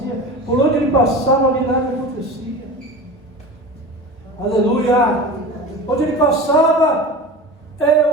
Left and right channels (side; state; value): both; normal; correlation 0.32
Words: Por onde ele passava, o milagre acontecia. Aleluia! Onde ele passava,